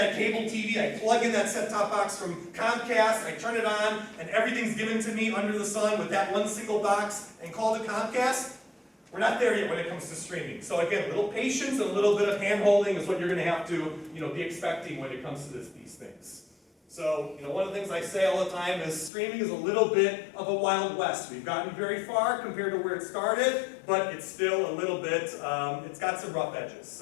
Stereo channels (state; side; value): drops out; right; at 19.1 s